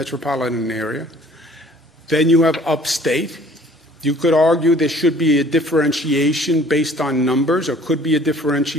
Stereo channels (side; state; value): both; normal; correlation 0.54